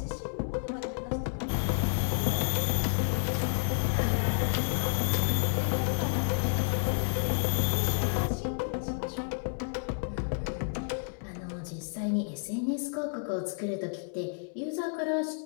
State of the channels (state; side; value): silent; right; digital silence